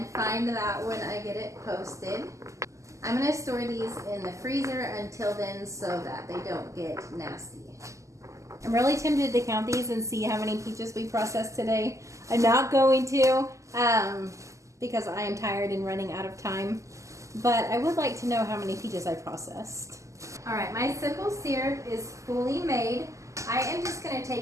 find that when I get it posted. I'm gonna store these in the freezer until then so that they don't get nasty. I'm really tempted to count these and see how many peaches we processed today. I'm not going to, because I am tired and running out of time, but I would like to know how many peaches I processed. All right, my simple syrup is fully made. I am just gonna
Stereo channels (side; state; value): left; late; 0.15 ms